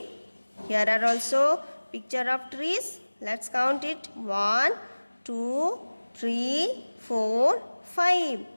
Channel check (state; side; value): inverted; both; correlation -1.00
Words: here are also picture of trees. Let's count it. 1, 2, 3, 4, 5.